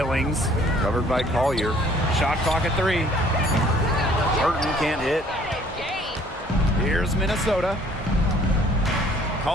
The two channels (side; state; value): both; normal; correlation 0.58